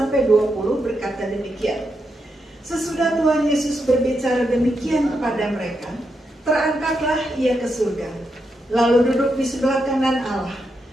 20 berkata demikian. Sesudah Tuhan Yesus berbicara demikian kepada mereka, terangkatlah ia ke surga, lalu duduk di sebelah kanan Allah.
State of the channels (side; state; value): both; normal; correlation 0.84